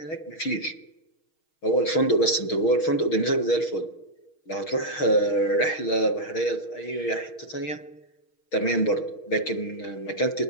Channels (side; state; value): right; late; 6.4 ms